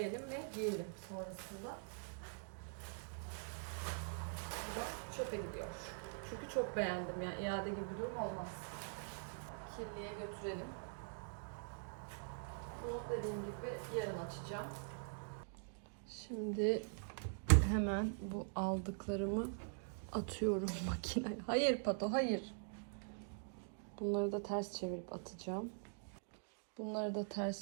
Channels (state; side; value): silent; left; digital silence